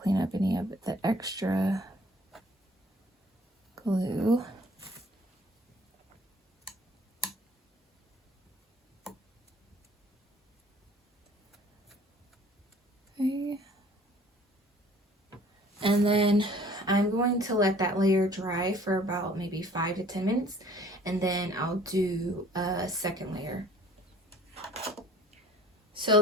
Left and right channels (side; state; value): both; normal; correlation 0.53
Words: clean up any of the extra glue. Okay. And then I'm going to let that layer dry for about maybe 5 to 10 minutes, and then I'll do a second layer.